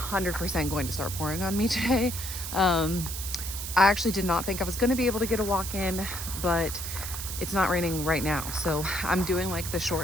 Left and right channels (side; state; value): right; noise; hiss, 6 dB below the sound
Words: going to start pouring on me today. I actually did not think I was going to be able to get a walk in, but it's not raining right now. So I'm doing like the